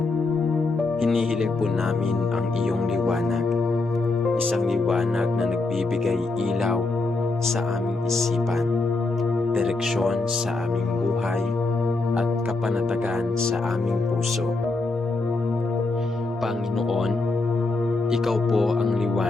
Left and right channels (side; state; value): right; quieter; 3.4 dB